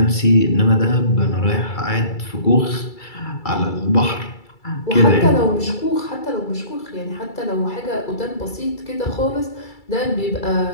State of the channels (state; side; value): late; right; 2.3 ms